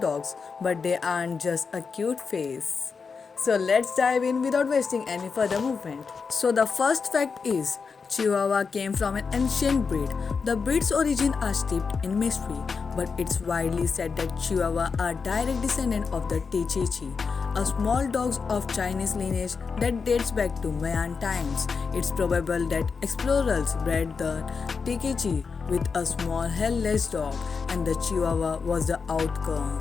but they aren't just a cute face. So let's dive in without wasting any further movement. So the first fact is Chihuahua came from an ancient breed. The breed's origin are steeped in mystery, but it's widely said that Chihuahua are direct descendant of the Tichichi, a small dog of Chinese lineage that dates back to Mayan times. It's probable that explorers bred the Tikichi with a small hairless dog, and the Chihuahua was the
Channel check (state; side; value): quieter; right; 5.3 dB